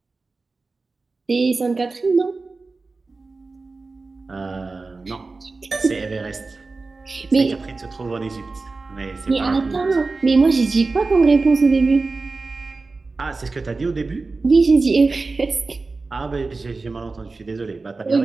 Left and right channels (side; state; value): left; quieter; 3.8 dB